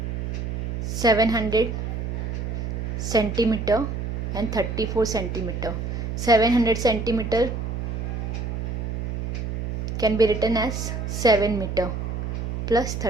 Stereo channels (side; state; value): right; noise; hum, 3 dB below the sound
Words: 700 centimeter and 34 centimeter. 700 centimeter can be written as 7 meter plus